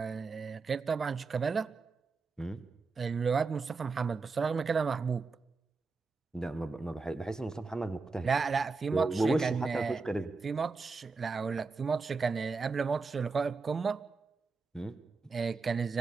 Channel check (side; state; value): left; quieter; 4.4 dB